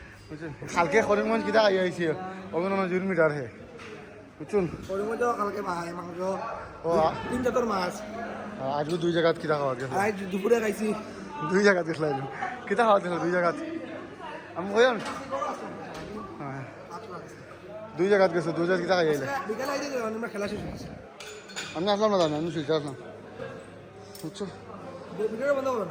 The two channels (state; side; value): identical; both; correlation 1.00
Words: বুঝছেন কালকে করিমগঞ্জ কিতা খাই আইছে অভিনন্দন 2 মিটার হে বুঝছেন ওর মধ্যে কালকে ভাই মাংস ও 3 জাতর মাছ আজকে 2 জায়গাত কিতা খাওয়া গেছে আজ দুপুরে খাইছি 2 জায়গাত গেছিলাম কিতা খাওয়া গেছিল 2 জায়গাত আমি কইম হ্যাঁ 2 জায়গাত গেছে 2 জায়গাত কিতা খাই আইলে বিকালে আইতে আমরা খেলা শেষ হয়েছে আমি আসলাম না জানি আমি শুইতে আসলাম বুঝছো ভিডিওটা বন্ধ করো